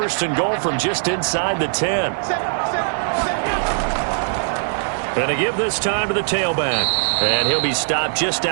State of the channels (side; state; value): left; silent; digital silence